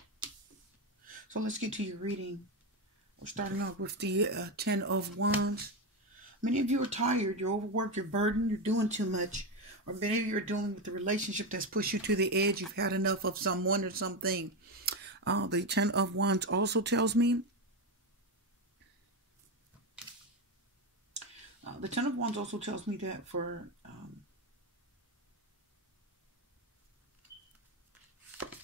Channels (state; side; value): normal; both; correlation 0.12